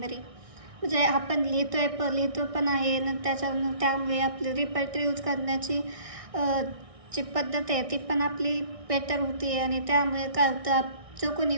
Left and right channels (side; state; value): left; late; 1.6 ms